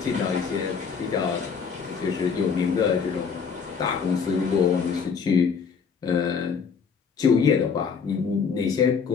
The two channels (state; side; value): quieter; right; 6.1 dB